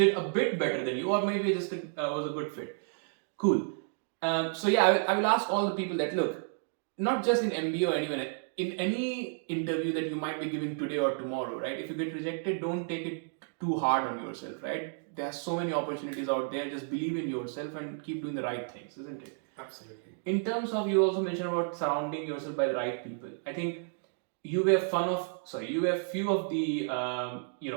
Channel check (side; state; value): left; silent; digital silence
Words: a bit better than you, or maybe just was a good fit. Cool. So I will ask all the people that look, not just in MBA or anyone, in any interview that you might be giving today or tomorrow, right? If you get rejected, don't take it too hard on yourself, right? There are so many opportunities out there. Just believe in yourself and keep doing the right things, isn't it? Absolutely. In terms of, you also mentioned about surrounding yourself by the right people. I think you were few of the